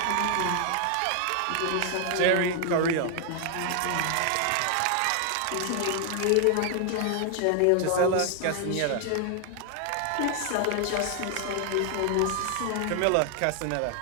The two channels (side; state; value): both; different; correlation 0.00